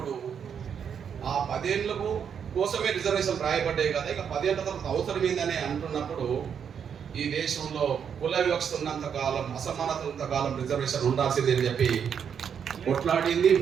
ఆ 10 ఏళ్ళకు కోసమే రిజర్వేషన్ రాయబడ్డాయి కదా, ఇక 10 ఏళ్ళ తర్వాత అవసరం ఏందని అంటున్నప్పుడు ఈ దేశంలో కుల వివక్ష ఉన్నంత కాలం, అసమానత ఉన్నంత కాలం రిజర్వేషన్ ఉండాల్సింది అని చెప్పి కొట్లాడింది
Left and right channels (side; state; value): left; quieter; 7.6 dB